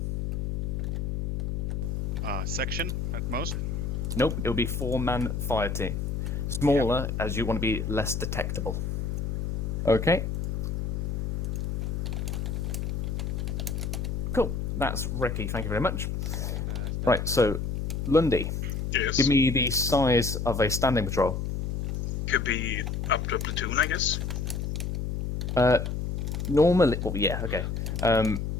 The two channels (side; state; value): left; noise; hum, 1 dB below the sound